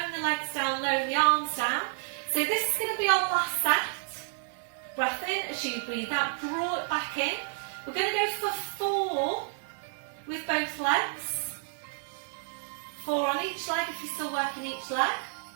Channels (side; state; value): left; silent; digital silence